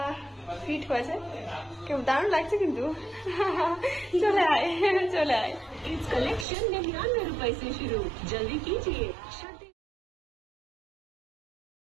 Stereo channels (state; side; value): drops out; left; at 6.5 s